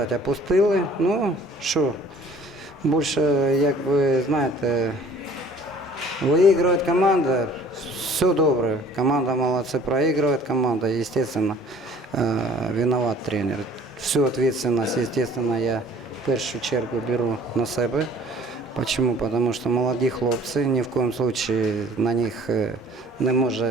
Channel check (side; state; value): both; normal; correlation 0.53